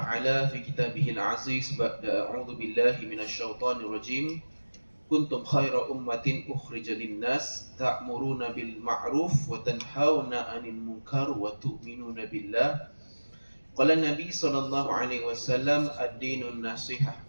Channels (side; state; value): both; inverted; correlation -1.00